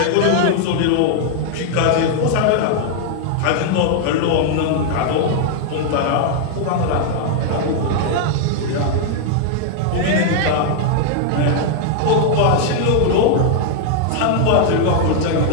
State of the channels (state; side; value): different; both; correlation 0.00